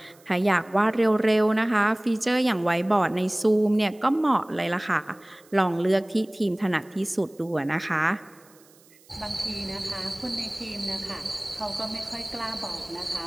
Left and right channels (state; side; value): noise; right; hiss, 28 dB below the sound